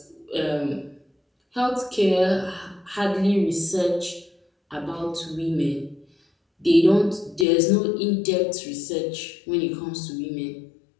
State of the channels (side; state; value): right; drops out; at 7.5 s